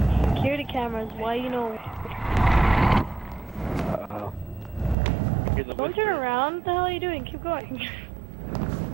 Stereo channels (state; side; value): drops out; left; at 5.0 s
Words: Security cameras, why you know? Uh-oh. Don't turn around. What the hell are you doing? Keep going.